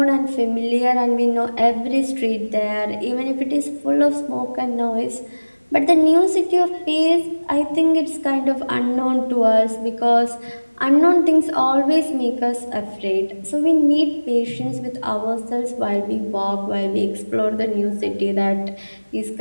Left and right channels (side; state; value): both; inverted; correlation -1.00